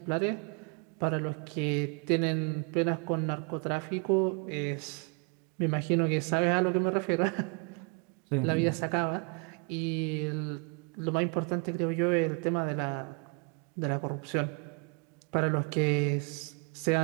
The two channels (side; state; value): left; quieter; 32.8 dB